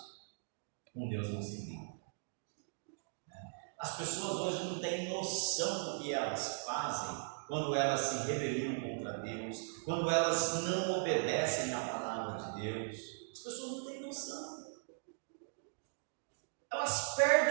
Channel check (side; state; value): left; silent; digital silence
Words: com Deus não se brinca. As pessoas hoje não têm noção do que elas fazem quando elas se rebeliam contra Deus, quando elas não obedecem à palavra de Deus. As pessoas não têm noção. Elas